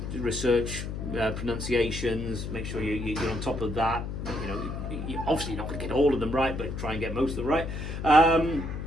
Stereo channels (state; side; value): noise; left; hum, 6 dB below the sound